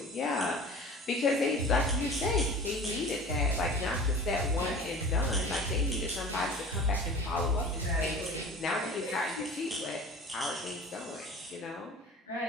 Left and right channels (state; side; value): normal; both; correlation 0.40